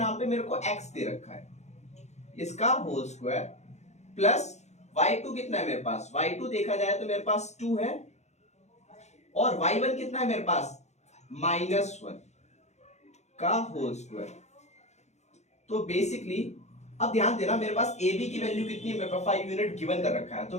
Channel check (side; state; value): right; late; 0.33 ms